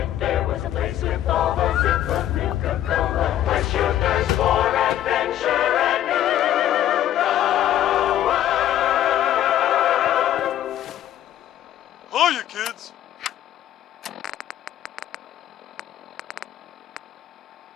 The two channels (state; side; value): quieter; right; 12.0 dB